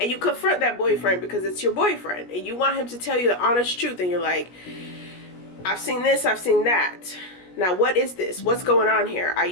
you confront that boyfriend because it's your boyfriend and you want him to tell you the honest truth, and you're like, "I've seen this, I've seen that. Now, what is this? What's going on here? Are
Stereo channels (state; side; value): late; right; 17 ms